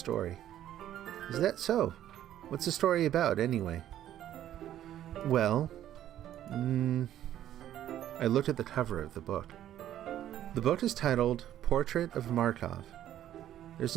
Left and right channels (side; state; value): left; quieter; 11.8 dB